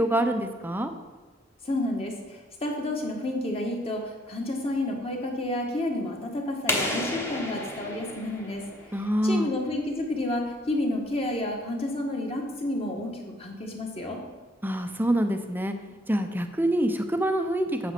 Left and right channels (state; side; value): normal; both; correlation 0.67